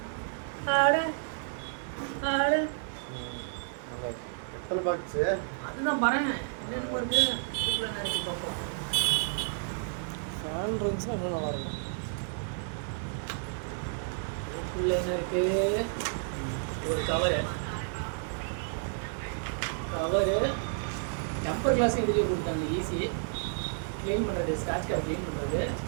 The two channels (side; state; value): left; silent; digital silence